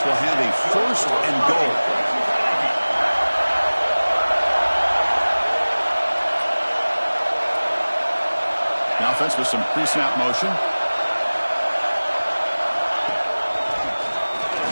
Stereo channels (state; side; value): inverted; both; correlation -1.00